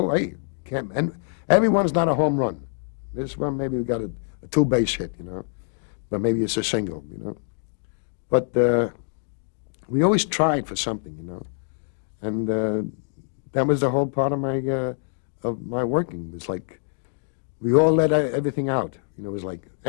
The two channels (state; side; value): silent; right; digital silence